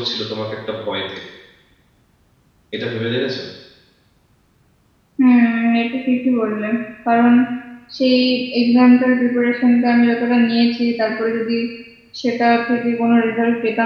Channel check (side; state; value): both; identical; correlation 1.00